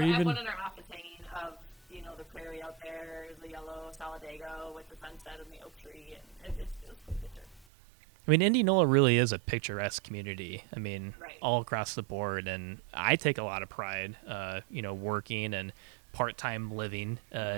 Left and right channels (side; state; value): left; drops out; at 7.7 s